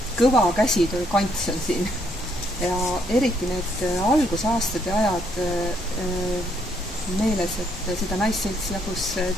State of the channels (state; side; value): normal; both; correlation 0.71